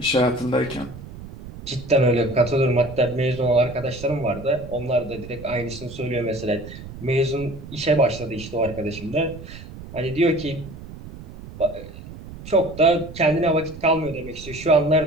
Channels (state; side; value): noise; right; rumble, 14 dB below the sound